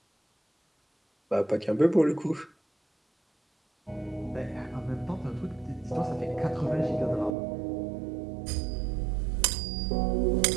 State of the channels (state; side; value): drops out; left; at 7.4 s